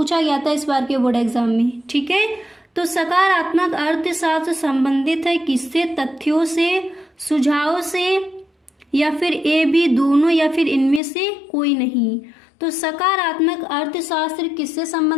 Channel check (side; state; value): right; drops out; at 11.0 s